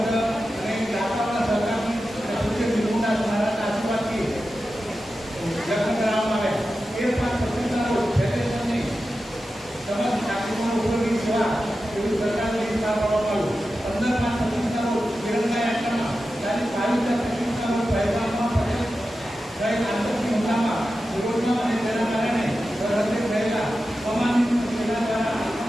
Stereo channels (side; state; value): both; normal; correlation 0.92